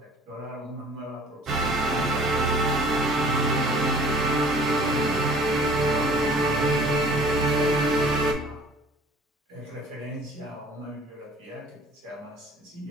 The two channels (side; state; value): both; normal; correlation 0.49